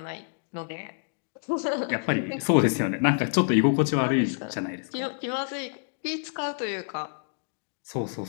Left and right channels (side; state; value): right; silent; digital silence